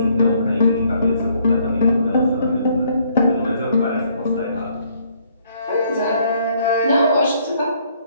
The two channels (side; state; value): both; inverted; correlation -0.66